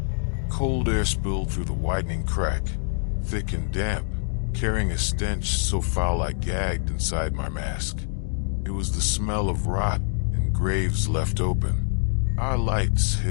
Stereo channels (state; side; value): silent; right; digital silence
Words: Cold air spilled through the widening crack, thick and damp, carrying a stench so foul I gagged inside my mask. It was the smell of rot and graves left open. Our lights